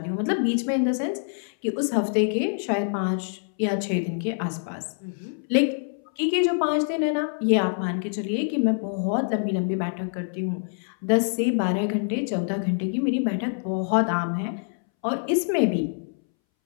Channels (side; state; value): right; silent; 61 dB below the other